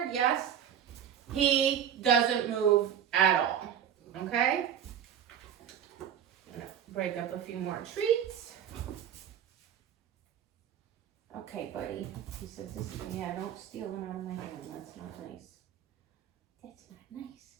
yes, he doesn't move at all. Okay. Break up a few more treats. Okay, buddy. He says, yeah, don't steal it out of my hand. That's not nice. That's not nice.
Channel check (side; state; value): left; quieter; 9.2 dB